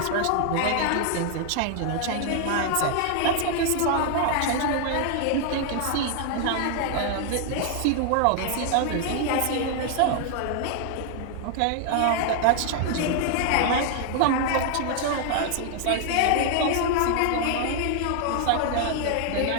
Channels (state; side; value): different; both; correlation 0.00